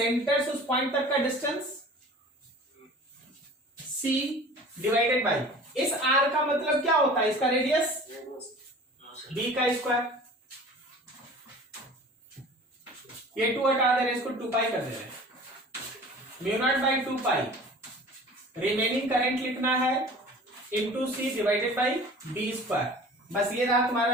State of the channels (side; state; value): both; normal; correlation 0.43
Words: से उस पॉइंट तक का डिस्टेंस सी डिवाइडेड बाई इस आर का मतलब क्या होता है, इसका रेडियस बी का स्क्वायर। ये 2 हटा दे रहे, इसको 2 पाई कर दे रहे, mu naught by 2 pi remaining current लिखना है into C divided by B square. बस ये रहा तुम्हारा